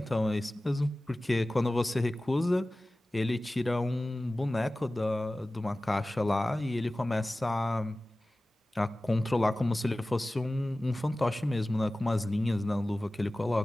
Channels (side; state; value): both; normal; correlation 0.97